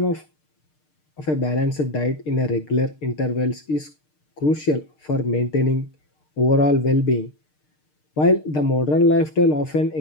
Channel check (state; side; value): late; right; 6.6 ms